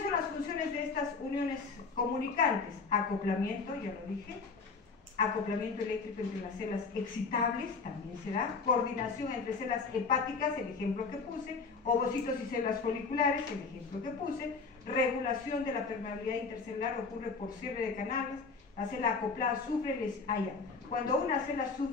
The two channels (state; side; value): quieter; right; 4.6 dB